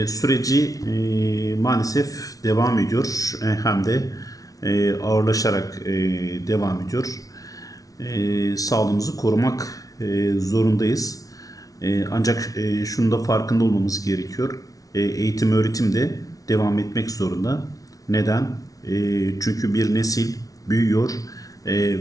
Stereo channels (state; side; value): late; right; 0.18 ms